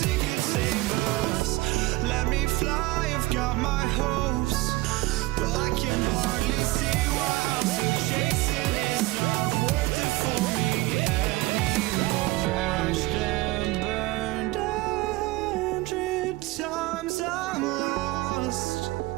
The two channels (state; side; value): quieter; left; 19.7 dB